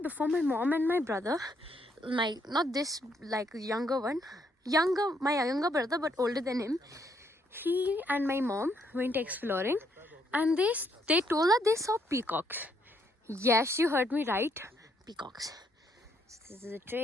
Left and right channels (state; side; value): normal; both; correlation 0.72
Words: before my mom and my brother, not this like younger one, my younger brother but older than him, he and my mom went exploring and they told us they saw peacocks. Yes, you heard me right. Peacocks. So this is a